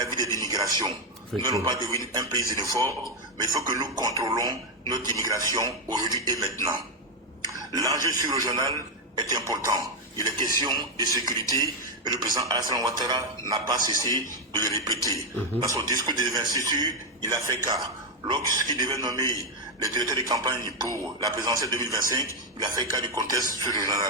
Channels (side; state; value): both; normal; correlation 0.03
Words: de l'immigration. Nous n'allons pas devenir un pays xénophobe, mais il faut que nous contrôlons notre immigration aujourd'hui et maintenant. L'enjeu sur-régional est important. Il est question de sécurité et le président Alassane Ouattara n'a pas cessé de le répéter. Dans son discours d'investiture, il a fait cas. Lorsqu'il devait nommer les directeurs de campagne pour la présidentielle 2025, il a fait cas du contexte